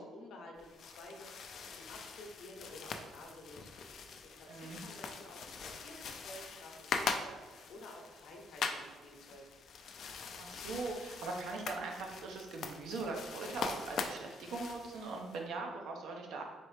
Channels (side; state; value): both; normal; correlation 0.67